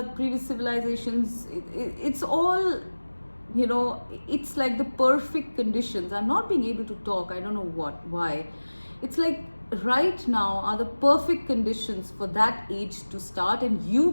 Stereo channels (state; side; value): inverted; both; correlation -1.00